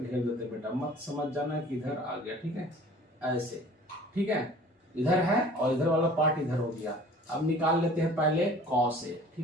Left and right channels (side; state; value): both; normal; correlation 0.47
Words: देते बेटा, मत समझ जाना कि इधर आ गया, ठीक है, ऐसे, ठीक है, इधर है और इधर वाला पार्ट इधर हो गया। अब निकाल लेते हैं पहले कॉस ए,